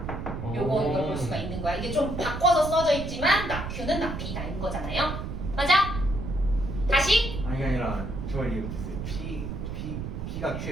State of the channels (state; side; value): noise; right; rumble, 6 dB below the sound